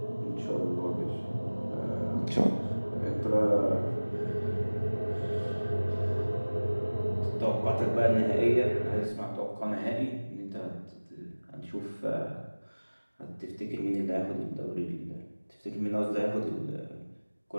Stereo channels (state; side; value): inverted; both; correlation -1.00